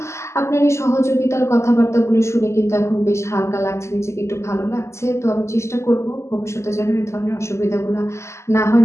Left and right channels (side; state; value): right; late; 0.13 ms